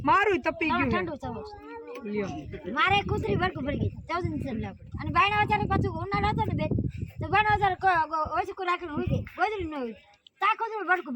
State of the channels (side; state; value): both; identical; correlation 1.00